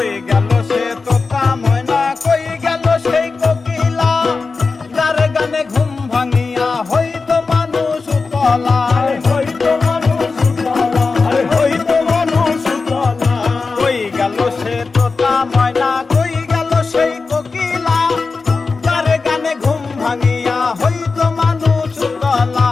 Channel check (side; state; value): right; quieter; 4.3 dB